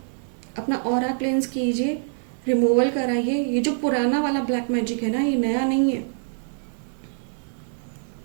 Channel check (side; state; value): left; silent; 62 dB below the other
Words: अपना ऑरा क्लेंस कीजिए, रिमूवल कराइए। ये जो पुराना वाला ब्लैक मैजिक है ना, ये नया नहीं है।